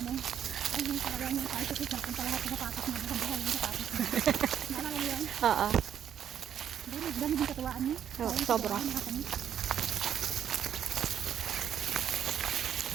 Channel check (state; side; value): quieter; left; 9.3 dB